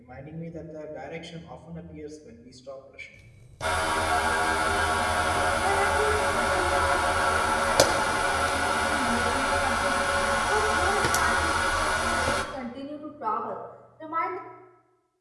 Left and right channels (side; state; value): both; identical; correlation 1.00